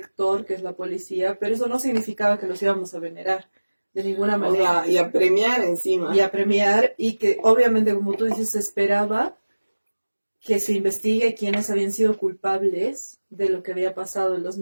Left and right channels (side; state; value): both; inverted; correlation -1.00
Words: que es la policía, pero eso no significaba que los íbamos a venerar de ninguna manera. Y a premiar encima. Y a premiar, y que obviamente, como tú dices, se esperaba que se investigue quiénes habían sido culpables de lo que había pasado en